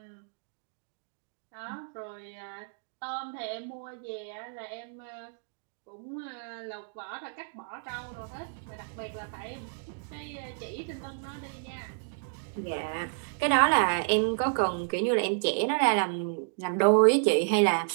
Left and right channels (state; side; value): silent; left; digital silence